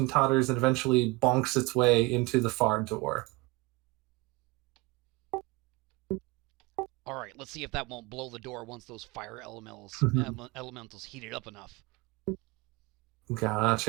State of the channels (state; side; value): quieter; left; 23.9 dB